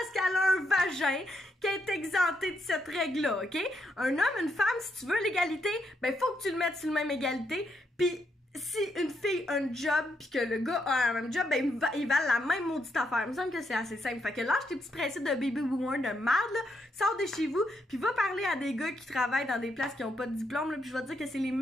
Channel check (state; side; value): normal; both; correlation 0.79